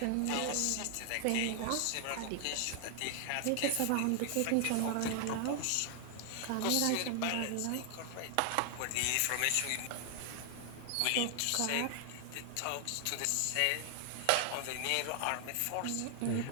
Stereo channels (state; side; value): different; both; correlation 0.00